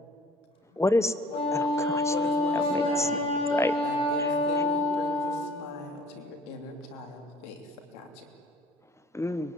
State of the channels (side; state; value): both; normal; correlation 0.51